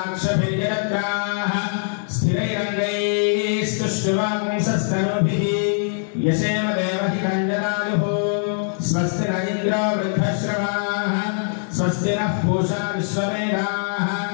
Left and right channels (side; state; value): right; silent; digital silence